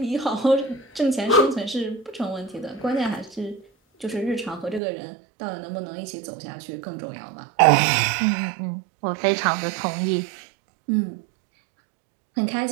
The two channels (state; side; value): drops out; left; at 4.8 s